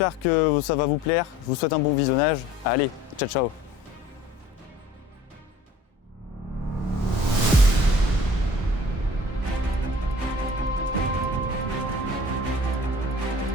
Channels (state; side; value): normal; both; correlation 0.48